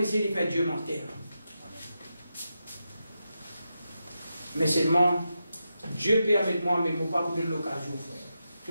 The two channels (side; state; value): both; inverted; correlation -0.88